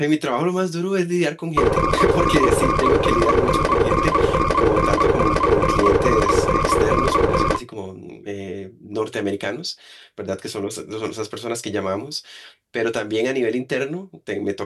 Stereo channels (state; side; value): identical; both; correlation 1.00